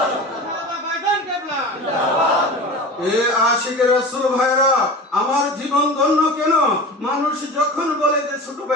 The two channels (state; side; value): normal; both; correlation 0.33